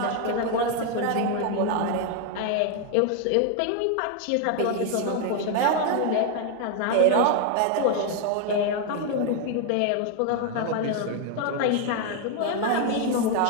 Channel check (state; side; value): different; both; correlation 0.01